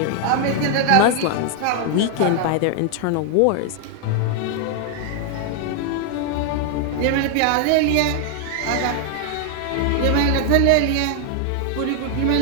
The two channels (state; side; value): different; both; correlation 0.00